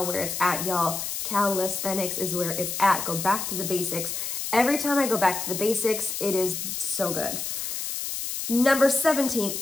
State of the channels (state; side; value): noise; left; hiss, 4 dB below the sound